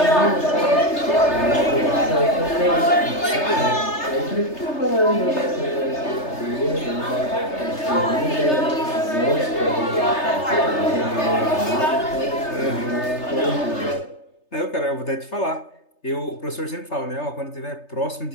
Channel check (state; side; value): late; right; 3.3 ms